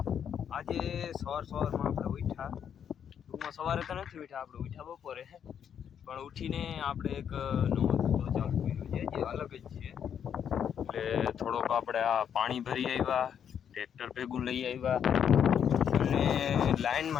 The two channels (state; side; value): quieter; right; 8.4 dB